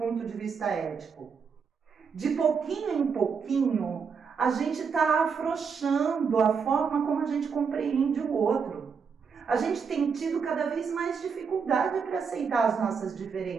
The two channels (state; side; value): quieter; left; 5.9 dB